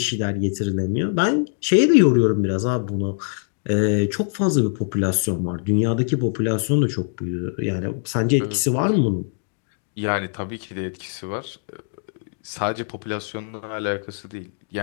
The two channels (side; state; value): right; silent; digital silence